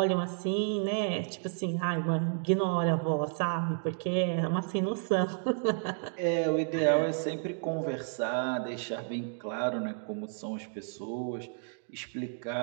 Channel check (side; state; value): left; silent; digital silence